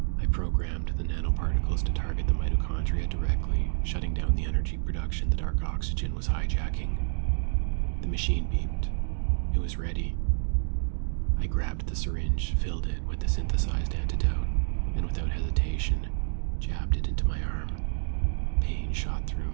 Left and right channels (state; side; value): silent; left; digital silence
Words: I programmed the nanoparticles to target the mitochondria directly, shutting down the energy production the dark oxygen was hijacking. The machine beeped. It was ready. I grabbed the syringe, filled it with the synthesized antidote, and without hesitation, jabbed it into my arm. Pain shot through